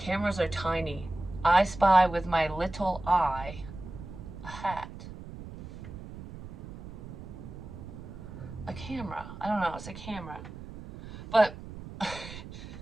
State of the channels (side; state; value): right; noise; rumble, 12 dB below the sound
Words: are tiny. I spy with my little eye a hat. A camera. I don't know, it's a camera. But I